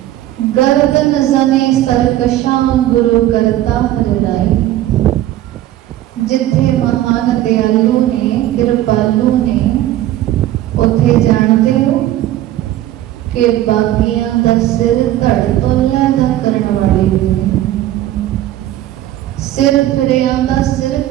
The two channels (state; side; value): quieter; left; 13.8 dB